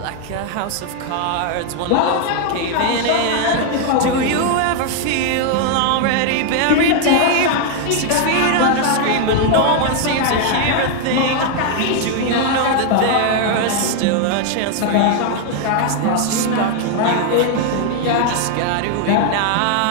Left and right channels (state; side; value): different; both; correlation 0.00